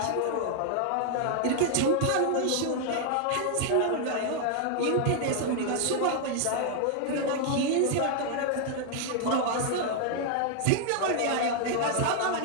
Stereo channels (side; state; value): both; different; correlation 0.00